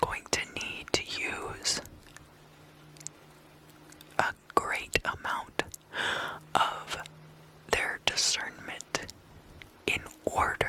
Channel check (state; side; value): identical; both; correlation 1.00